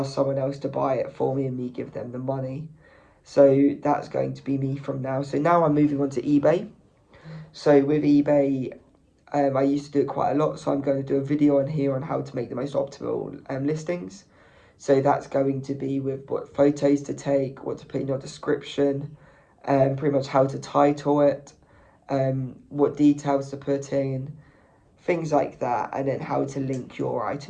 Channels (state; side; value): identical; both; correlation 1.00